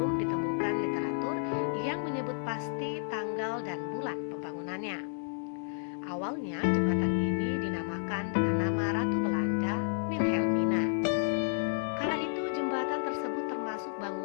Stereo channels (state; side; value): silent; right; digital silence